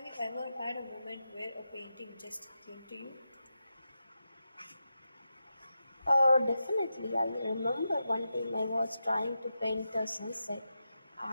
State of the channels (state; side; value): inverted; both; correlation -0.89